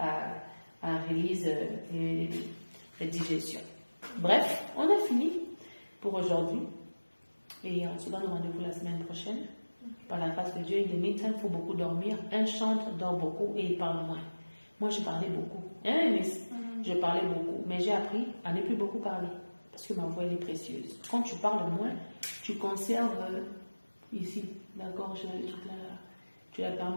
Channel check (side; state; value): both; inverted; correlation -1.00